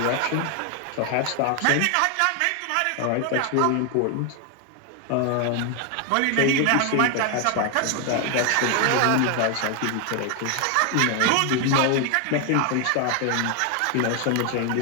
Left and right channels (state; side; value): different; both; correlation 0.01